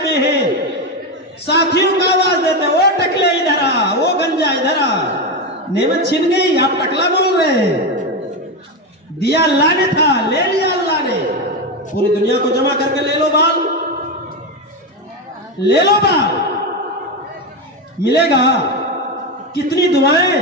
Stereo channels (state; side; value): normal; both; correlation 0.13